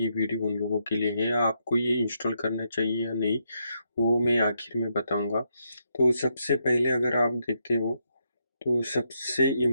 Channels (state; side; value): inverted; both; correlation -0.79